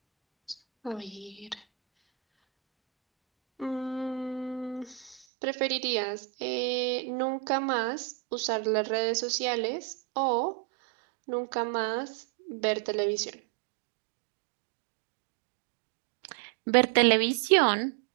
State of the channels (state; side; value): drops out; left; at 5.2 s